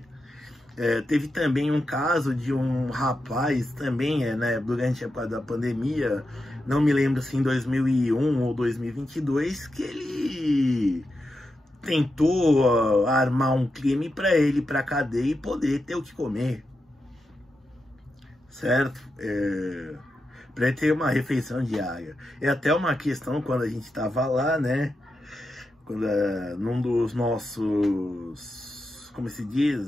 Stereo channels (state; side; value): normal; both; correlation 0.87